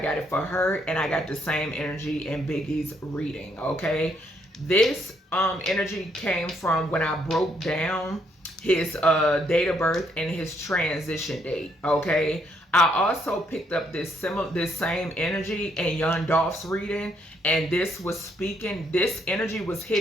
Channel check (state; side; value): normal; both; correlation 0.72